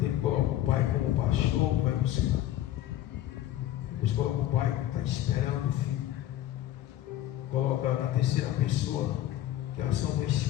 ele coloca o Pai como pastor, vai buscar. Depois coloca o Pai que está esperando o filho. Coloca na terceira pessoa, que é a ação do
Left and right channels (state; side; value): quieter; right; 13.2 dB